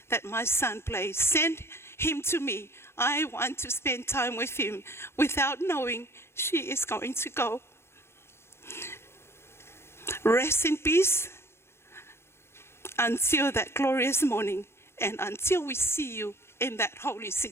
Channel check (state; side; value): late; right; 0.12 ms